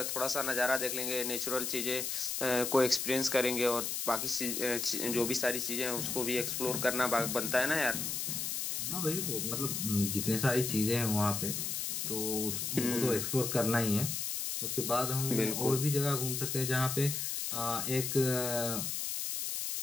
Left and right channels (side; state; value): left; noise; hiss, 2 dB below the sound